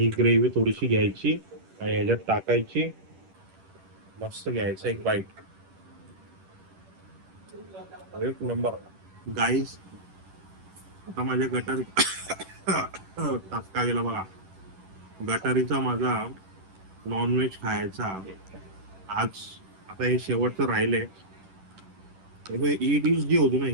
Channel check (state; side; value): late; left; 10 ms